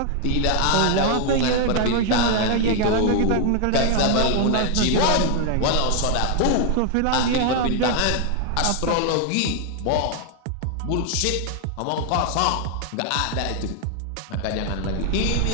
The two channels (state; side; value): different; both; correlation 0.01